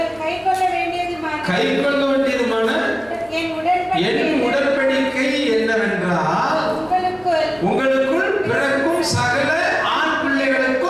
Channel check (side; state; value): right; noise; hum, 27 dB below the sound